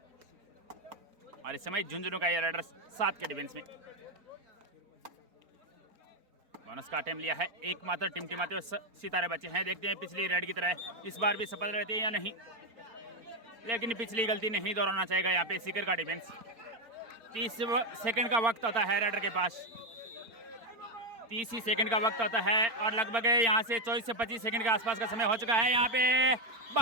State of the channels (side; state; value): left; late; 4.3 ms